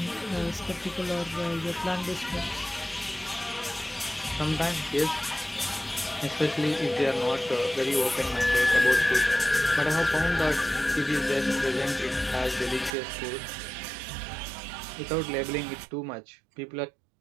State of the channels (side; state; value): left; drops out; at 12.9 s